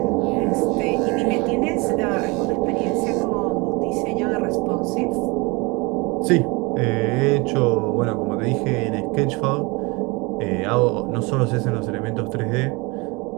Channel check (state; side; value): quieter; left; 26.5 dB